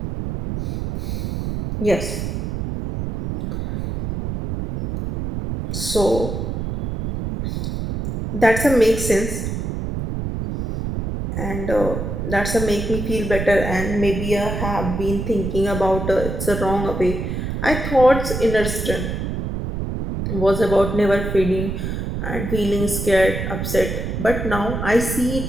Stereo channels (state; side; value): noise; right; rumble, 3 dB below the sound